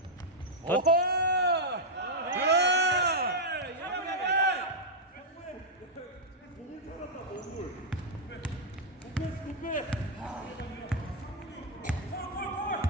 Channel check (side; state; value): both; normal; correlation -0.04